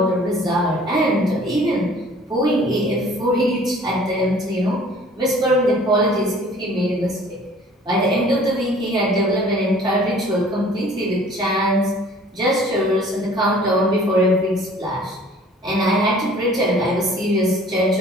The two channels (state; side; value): normal; both; correlation 0.51